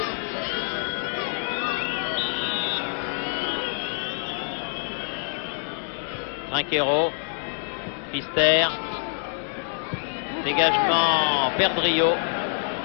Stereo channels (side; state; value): right; silent; 61 dB below the other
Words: Trinquero, Pfister, dégagement Perdrio.